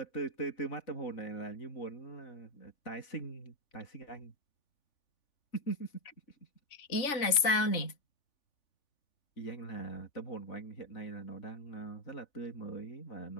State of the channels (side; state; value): right; late; 3.4 ms